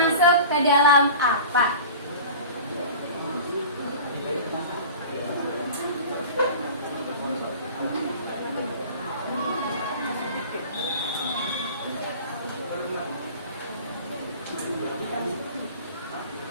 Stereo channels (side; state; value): both; inverted; correlation -0.38